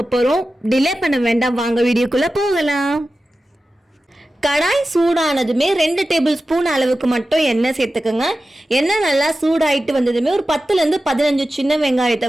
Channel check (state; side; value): normal; both; correlation 0.94